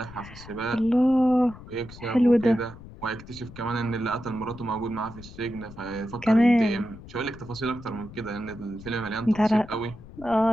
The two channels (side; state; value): left; noise; rumble, 17 dB below the sound